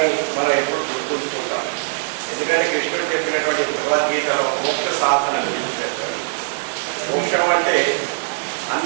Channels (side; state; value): left; silent; 65 dB below the other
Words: మనం ఎప్పుడు గుర్తుంచుకుంటాం. ఎందుకంటే కృష్ణుడు చెప్పినటువంటి భగవద్గీతలో మోక్ష సాధన గురించి చెప్తాడు. మోక్షం అంటే